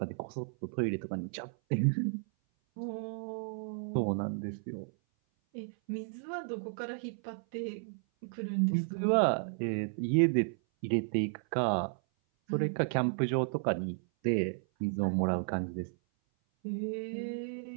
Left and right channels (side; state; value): left; silent; 56 dB below the other